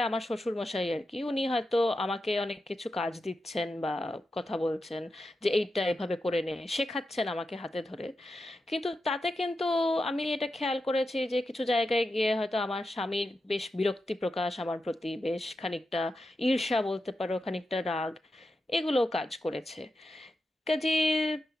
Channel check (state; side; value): normal; both; correlation 0.88